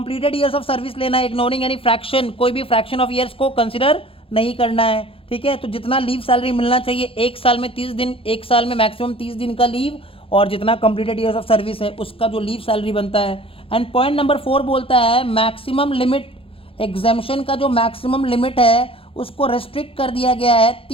ईयर्स ऑफ सर्विस लेना है, इग्नोरिंग एनी फ्रैक्शन, कोई भी फ्रैक्शन ऑफ ईयर्स को कंसिडर नहीं करना है. ठीक है, तो जितना लीव सैलरी मिलना चाहिए एक साल में 30 दिन, एक साल में मैक्सिमम 30 दिन का लीव, और जितना कंप्लीटेड ईयर्स ऑफ सर्विस है उसका जो लीव सैलरी बनता है. एंड पॉइंट नंबर 4 बोलता है मैक्सिमम लिमिट, एग्जेम्पशन का जो मैक्सिमम लिमिट है उसको रेस्ट्रिक्ट कर दिया गया है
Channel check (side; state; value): right; late; 0.27 ms